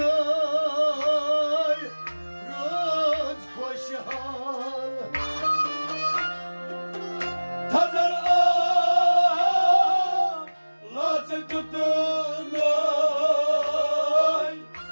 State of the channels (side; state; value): both; inverted; correlation -1.00